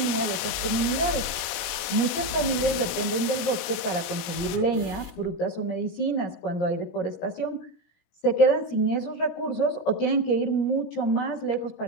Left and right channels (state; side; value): late; right; 17 ms